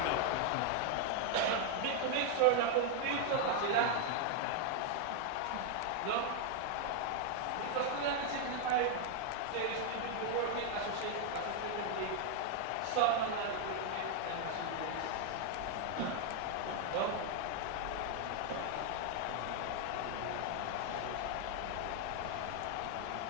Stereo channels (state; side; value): different; both; correlation 0.00